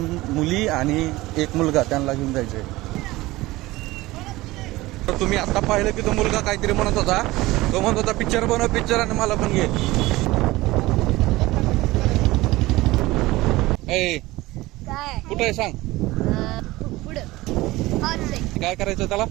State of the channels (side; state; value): left; quieter; 19.1 dB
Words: मुली आणि 1 मुलगा त्यांना घेऊन जायचे. तुम्ही आता पाहिलं की तो मुलगा काहीतरी म्हणत होता. तो म्हणत होता पिक्चर बनव पिक्चर आणि मला पण घे. कुठं आहे सांग. काय करायचं त्याला.